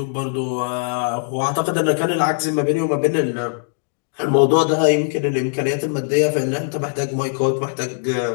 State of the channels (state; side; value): silent; right; digital silence